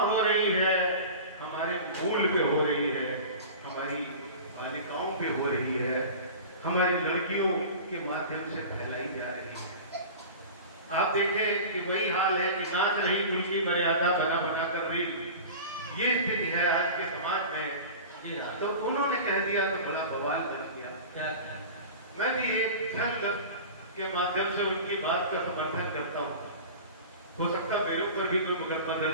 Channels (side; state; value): both; inverted; correlation -0.35